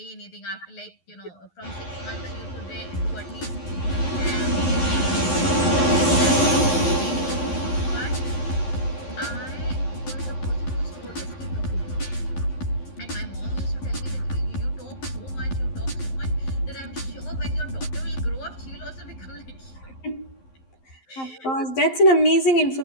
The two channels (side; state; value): right; late; 11 ms